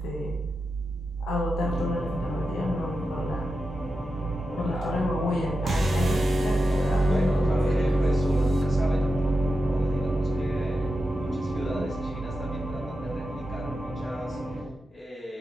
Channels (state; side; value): normal; both; correlation 0.90